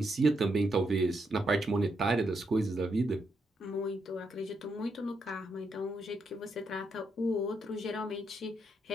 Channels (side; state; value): both; normal; correlation 0.80